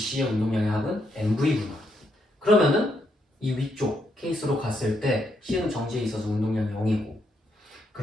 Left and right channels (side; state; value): both; normal; correlation 0.77